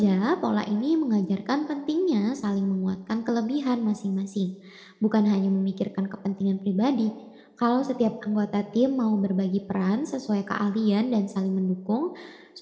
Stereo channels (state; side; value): identical; both; correlation 1.00